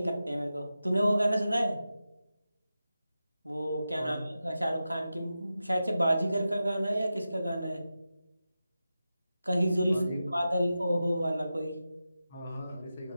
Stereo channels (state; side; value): inverted; both; correlation -0.92